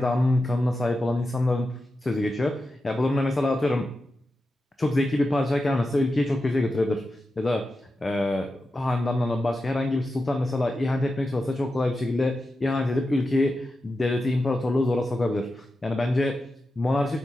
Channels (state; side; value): normal; both; correlation 0.91